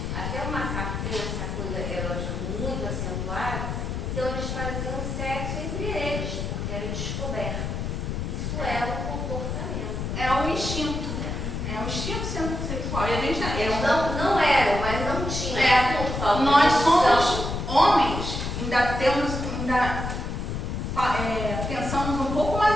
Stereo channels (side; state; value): left; noise; rumble, 3 dB below the sound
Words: Até o macaco tem essa coisa erótica muito acentuada, então eles faziam sexo entre eles, porque era descoberto. Isso é um comportamento. É um instinto. É um instinto sexual. E a gente eles não eram, mas não tinham. Nós somos homens, pensamos um pouco, mas